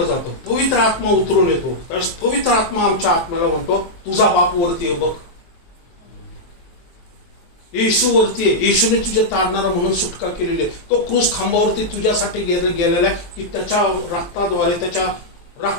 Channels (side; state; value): right; late; 23 ms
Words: जातं, पवित्र आत्मा उतरून येतो, त्यावेळेस पवित्र आत्मा आमच्या आत्म्याला म्हणतो, तुझा बाप वरती आहे बघ, येशू वरती आहे, येशूने तुझे तारणारा म्हणून सुटका केलेली आहे. तो क्रूस खांबावरती तुझ्यासाठी गेलेला आहे की त्याच्या रक्ताद्वारे